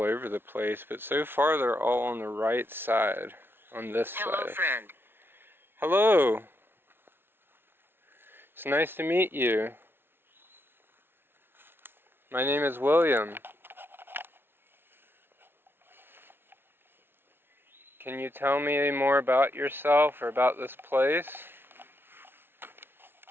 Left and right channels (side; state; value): left; late; 0.11 ms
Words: over the place, but so far they're all on the right side, on this side. Hello, friend. Hello. It's nice to meet you. My name is William. Can you tell me any more about yourself or about this place?